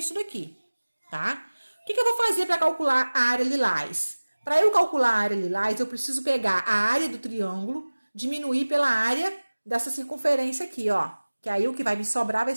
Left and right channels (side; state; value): both; inverted; correlation -1.00